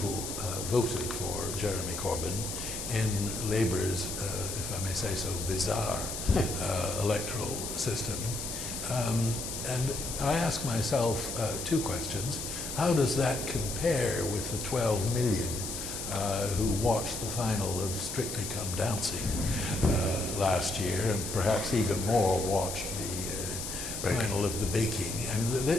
voted for Jeremy Corbyn in Labour's, if I may say so, bizarre electoral system. And I ask myself two questions. How does that compare with the 12 million who watched the final of Strictly Come Dancing last year, and perhaps even more watched the final of the baking? I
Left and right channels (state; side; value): noise; left; hiss, 6 dB below the sound